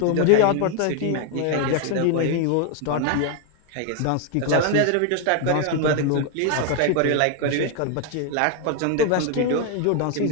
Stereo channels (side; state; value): both; different; correlation 0.01